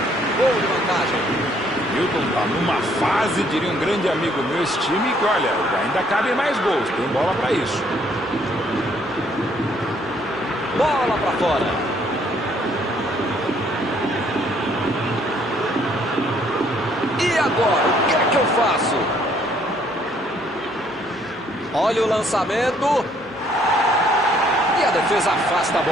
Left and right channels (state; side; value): normal; both; correlation 0.65